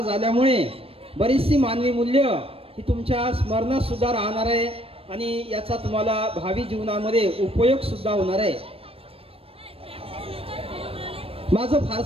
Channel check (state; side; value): late; left; 0.28 ms